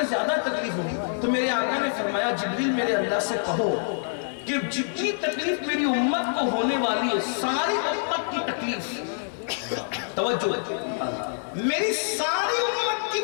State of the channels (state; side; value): silent; right; digital silence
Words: ज्यादा तकलीफ होगी। तो मेरे आका ने फरमाया, जिब्रील मेरे अल्लाह से कहो कि जितनी तकलीफ मेरी उम्मत को होने वाली है, सारी उम्मत की तकलीफ, तवज्जो, मेरी सारी उम्मत की